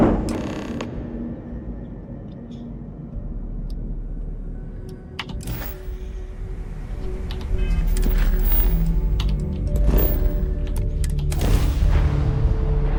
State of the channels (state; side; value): identical; both; correlation 1.00